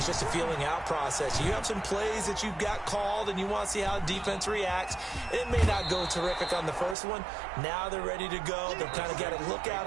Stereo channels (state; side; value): drops out; left; at 7.0 s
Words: just a feeling out process. You have some plays that you've got called and you want to see how the defense reacts. It may not go terrific on the first one. Now they're ready to go. They've kind of got to look at